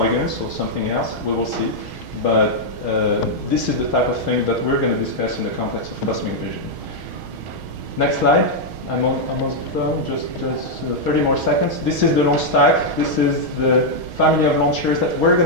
or something else? We will see. But this is the type of thing that we're going to discuss in the context of cosmic vision. Next slide. I'm almost done, just 30 more seconds. This is the launch stack. This is the family of launchers that we're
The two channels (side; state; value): left; late; 6.3 ms